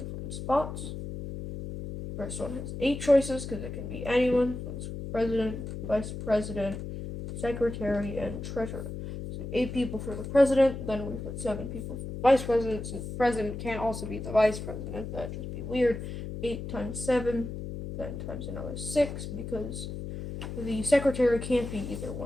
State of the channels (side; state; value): left; noise; hum, 7 dB below the sound